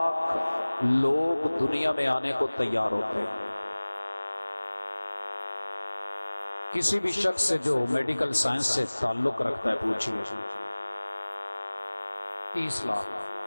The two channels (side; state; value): both; inverted; correlation -1.00